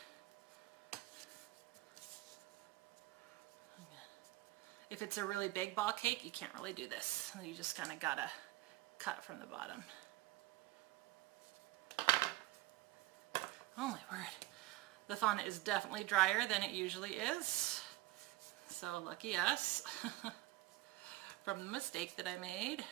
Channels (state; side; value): quieter; left; 17.8 dB